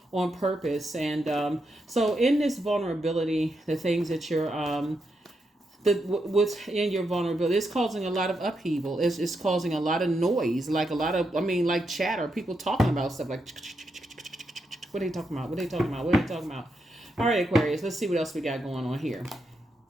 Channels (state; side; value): normal; both; correlation 0.83